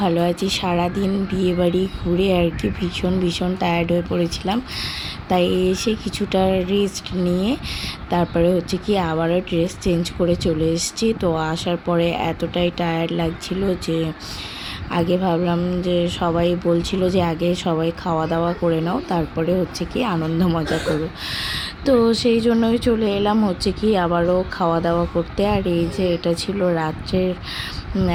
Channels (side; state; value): both; identical; correlation 1.00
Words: ভালো আছি। সারাদিন বিয়েবাড়ি ঘুরে আর কি ভীষণ টায়ার্ড হয়ে পড়েছিলাম, তাই এসে কিছুটা রেস্ট নিয়ে তারপরে হচ্ছে কি আবারও ড্রেস চেঞ্জ করে চলে এসেছি। তো আসার পরে এতটাই টায়ার্ড লাগছিল যে আগে ভাবলাম যে সবাই বলছিল যে আগে সবাই খাওয়া দাওয়া করে নাও, তারপরে হচ্ছে কি আনন্দ মজা করো। তো সেই জন্যই চলে এলাম হচ্ছে কি আবারও খাওয়া দাওয়া করতে। আর এই যে এটা ছিল রাত্রের